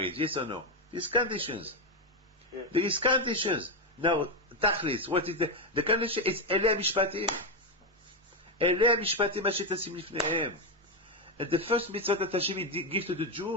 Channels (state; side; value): normal; both; correlation 0.07